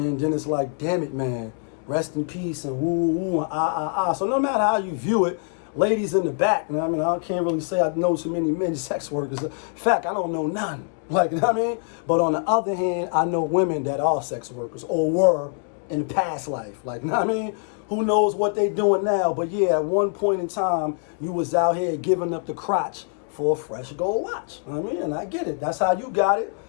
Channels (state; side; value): silent; right; 56 dB below the other